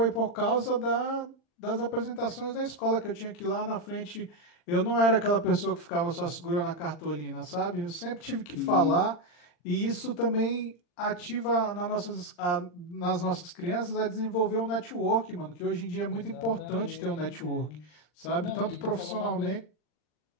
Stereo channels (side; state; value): right; late; 40 ms